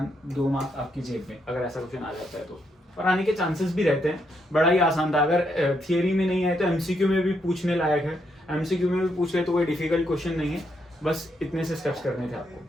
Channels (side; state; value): both; normal; correlation 0.77